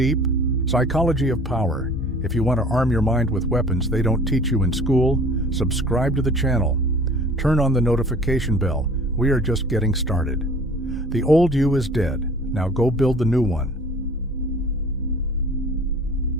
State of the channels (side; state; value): both; normal; correlation 0.47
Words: psychology of power, if you want to arm your mind with weapons they don't teach you in school, subscribe to the channel. Turn on the notification bell. We are just getting started. The old you is dead. Now go build the new one.